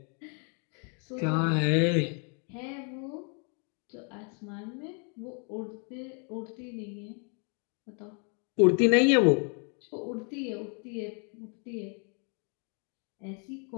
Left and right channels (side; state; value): right; quieter; 38.2 dB